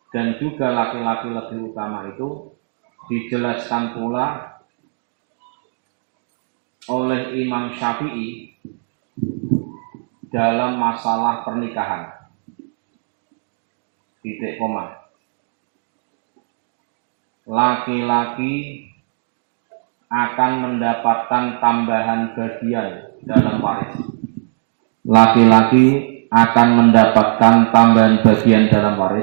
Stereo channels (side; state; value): left; silent; digital silence